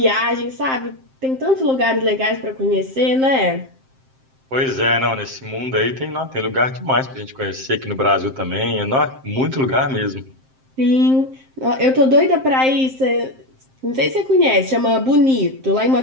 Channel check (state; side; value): late; left; 7.6 ms